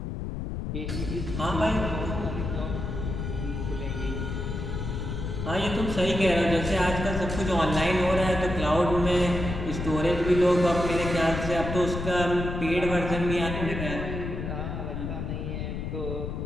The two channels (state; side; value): noise; left; rumble, 4 dB below the sound